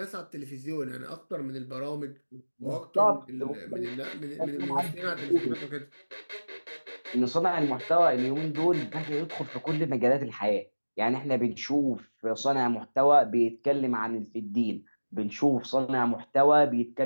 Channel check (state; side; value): inverted; both; correlation -1.00